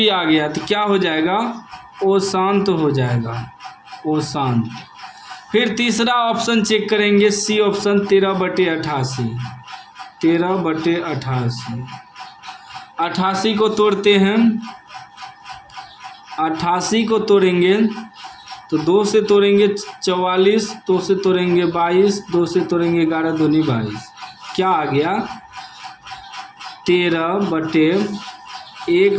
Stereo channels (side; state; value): both; identical; correlation 1.00